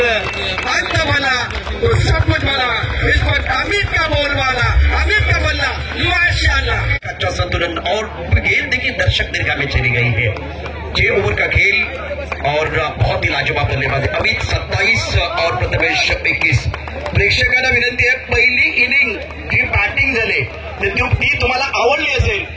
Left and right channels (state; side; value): identical; both; correlation 1.00